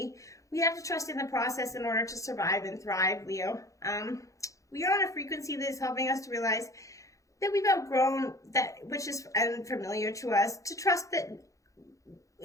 we have to trust in the process in order to survive and thrive, Leo. We are on a frequency that is helping us to realize that we've outgrown that which is unfamiliar to us, to trust that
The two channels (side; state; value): right; late; 0.16 ms